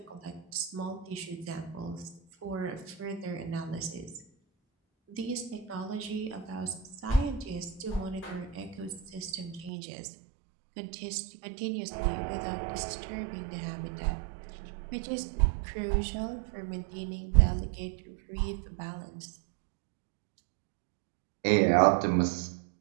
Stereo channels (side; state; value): left; drops out; at 9.7 s